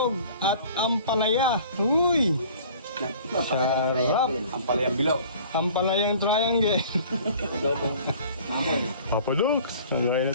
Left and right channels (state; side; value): inverted; both; correlation -0.48